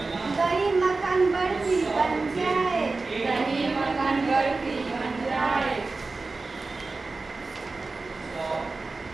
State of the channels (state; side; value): quieter; left; 3.7 dB